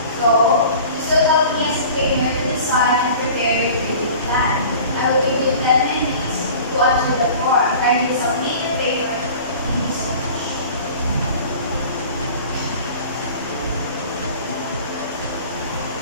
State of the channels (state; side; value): inverted; both; correlation -0.43